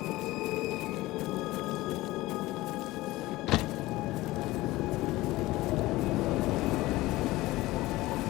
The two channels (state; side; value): quieter; right; 18.7 dB